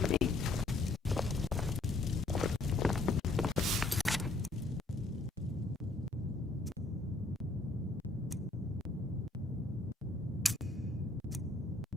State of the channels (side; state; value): right; quieter; 3.0 dB